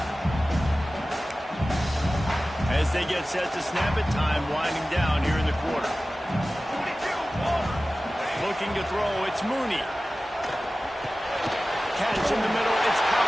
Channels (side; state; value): both; normal; correlation 0.96